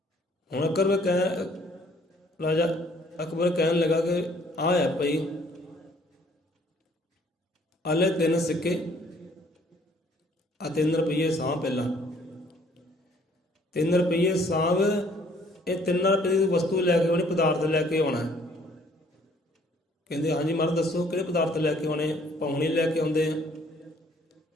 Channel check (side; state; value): both; normal; correlation 0.60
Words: ਹੁਣ ਰਾਜਾ ਅਕਬਰ ਕਹਿਣ ਲੱਗਾ ਕਿ ਆ ਹੈ ਭਾਈ, ਆਲੇ 3 ਸਿੱਕੇ ਆ 3 ਰੁਪਈਏ ਸਾਂਭ ਪਹਿਲਾਂ। 3 ਰੁਪਈਏ ਸਾਂਭ। ਇਹ 3 ਰੁਪਏ ਦੀ ਵਸਤੂ ਲੈ ਕੇ ਆਉਣੀ, ਪਦਾਰਥ ਲੈ ਕੇ ਆਉਣਾ। ਕਹਿੰਦੇ ਹਾਂਜੀ ਮਹਾਰਾਜ ਦੱਸੋ ਕਿਹੜੇ ਪਦਾਰਥ ਲੈ ਕੇ ਆਉਣੇ? ਪਾਉਣੀ ਲੈ ਕੇ ਆਉਂਦੇ ਆ।